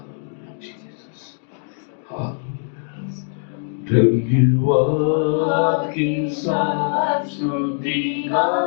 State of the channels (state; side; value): silent; right; digital silence